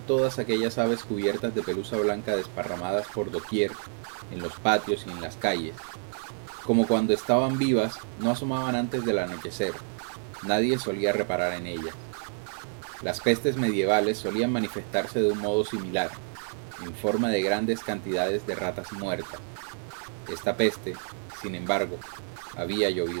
todas aquellas aves cubiertas de pelusa blanca desparramadas por doquier, en los patios y en las calles. Como cuando estaban vivas, no asomaban antes del anochecer. Nadie solía reparar en ellas. Las pestes medievales solían manifestarse de un modo similar, en forma de grandes cantidades de ratas muertas. Esta peste, sin embargo, había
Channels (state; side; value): silent; left; 59 dB below the other